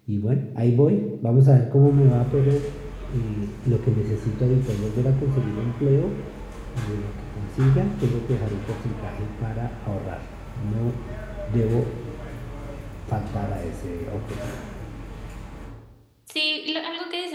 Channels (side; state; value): both; identical; correlation 1.00